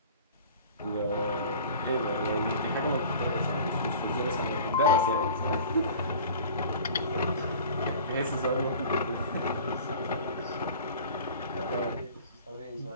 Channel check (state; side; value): inverted; both; correlation -0.42